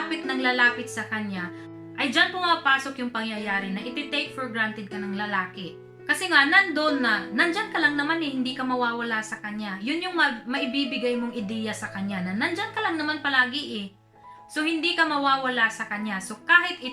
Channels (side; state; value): both; identical; correlation 1.00